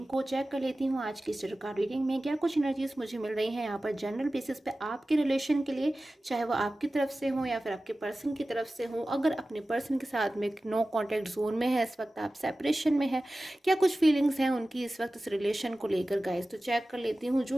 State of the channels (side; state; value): both; normal; correlation 0.96